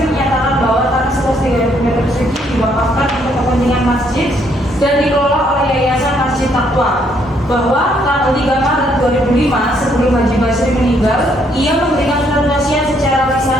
menyatakan bahwa tanah seluas 30 meter persegi diwakafkan untuk kepentingan masjid dan dikelola oleh Yayasan Masjid Taqwa. Bahwa tanggal 3 Maret 2005 sebelum Haji Basri meninggal, ia memberikan surat wasiat secara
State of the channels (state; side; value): normal; both; correlation 0.70